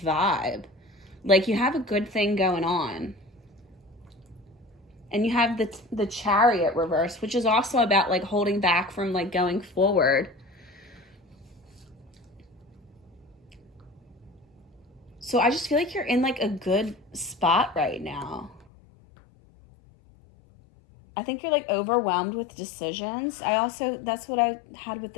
vibe. Like you have a good thing going on. And you have the Chariot reversed, which is also about like holding back from like going forward. So I just feel like you're in like a good spot right now. I think you're like overwhelmed with decisions. That's what I had with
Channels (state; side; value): drops out; right; at 18.7 s